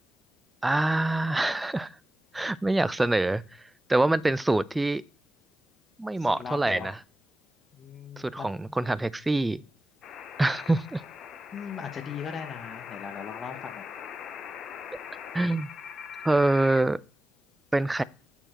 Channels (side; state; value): both; normal; correlation 0.96